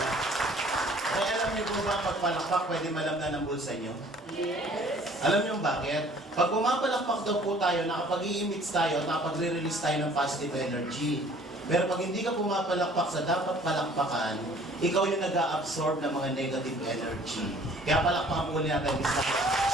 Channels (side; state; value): both; normal; correlation 0.54